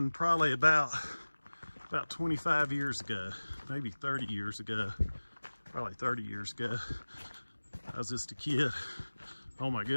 probably about 25 years ago, maybe 30 years ago, probably 30 years ago. I was just a kid. Oh my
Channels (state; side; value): inverted; both; correlation -1.00